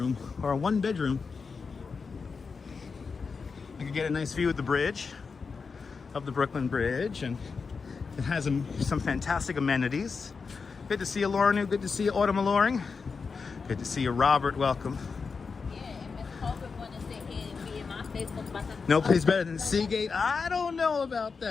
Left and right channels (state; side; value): quieter; right; 5.0 dB